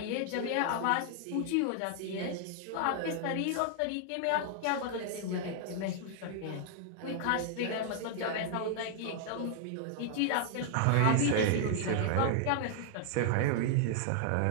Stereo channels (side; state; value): both; different; correlation 0.00